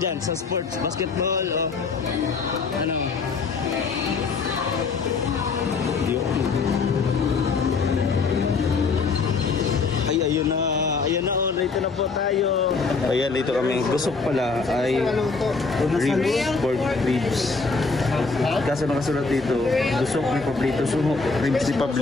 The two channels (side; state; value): right; quieter; 4.5 dB